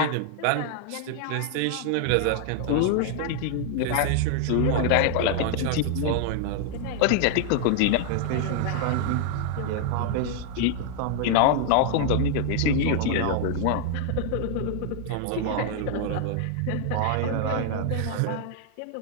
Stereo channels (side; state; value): both; different; correlation 0.00